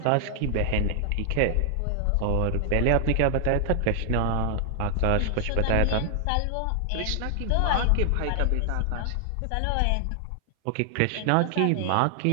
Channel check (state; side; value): different; both; correlation 0.00